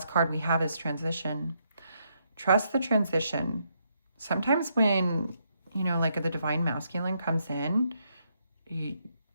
card we have is transition. Trust the transition. Sometimes when, you know, like the divine masculine comes in,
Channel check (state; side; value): inverted; both; correlation -0.77